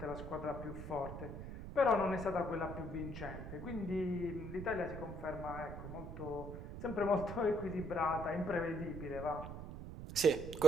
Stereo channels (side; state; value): right; noise; rumble, 8 dB below the sound